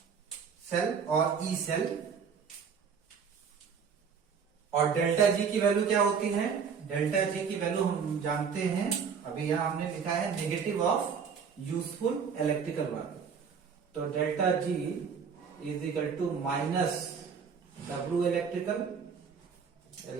सेल और ई सेल। और डेल्टा जी की वैल्यू क्या होती है, डेल्टा जी की वैल्यू हम जानते हैं, अभी यहां हमने लिखा है negative of useful electrical work. तो delta G is equal to minus W electrical,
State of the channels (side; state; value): left; quieter; 6.4 dB